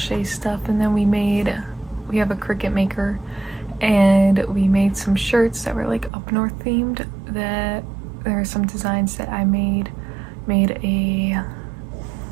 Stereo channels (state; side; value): drops out; left; at 6.1 s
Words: stuff, and then we have a Cricut maker, and we made some shirts that were like up north themed. That there are some designs that I made